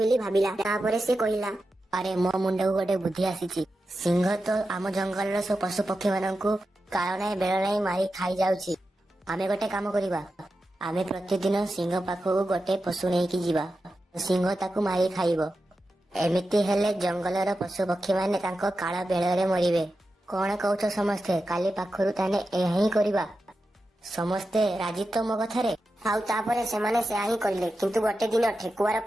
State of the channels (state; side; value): normal; both; correlation 0.91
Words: भाबिला। तापरे से कहिला, अरे मो मुंडा गोटे बुद्धि आसीची। सिंह तो आम जंगलर सब पशु पक्षी माननकु काल नाही बेल नाही मारी खाई जाउची। आमे गोटे काम करिबा। आमे प्रतिदिन सिंह पाखକୁ गोटे पशु नेकी जीवा। सिंह ताकू मारी खाइबो। एमिति हेले जंगलर पशु पक्षी माने तांको काल बेଳରେ मरिबे। कोन कहउछ समस्ते काली पाखरु ताने एही करिबा। समस्ते राजी तो मो कथारे। आउ तापरे सेमाने से आही करिले। किंतु गोटे दिन ठेकुआर